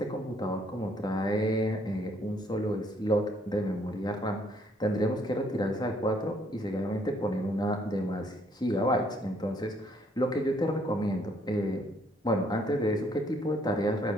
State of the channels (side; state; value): both; normal; correlation 0.66